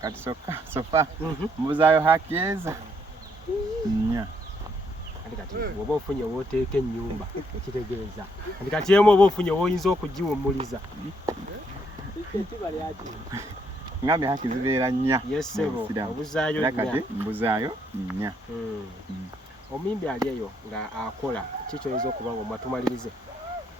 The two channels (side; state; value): both; normal; correlation 0.72